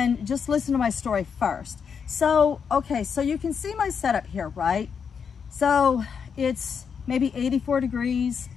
just listen to my story first. So, okay, so you can see my setup here, right? So it's maybe 84 degrees,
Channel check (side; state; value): right; quieter; 6.6 dB